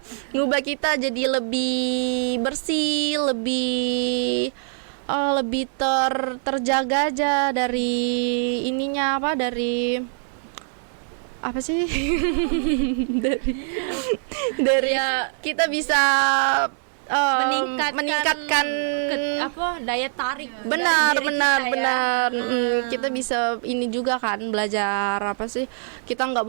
ngubah kita jadi lebih bersih, lebih terjaga aja dari ininya apa, dari apa sih? dari Ya, kita bisa meningkatkan daya tarik Iya, benar dari diri benar kita ya. benar. Kita bisa ini juga kan belajar apa sih, kita nggak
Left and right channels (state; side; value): silent; left; 63 dB below the other